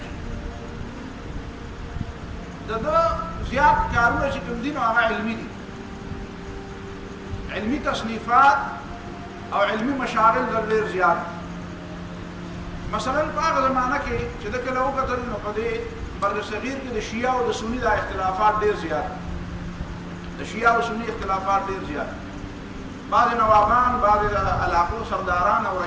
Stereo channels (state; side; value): identical; both; correlation 1.00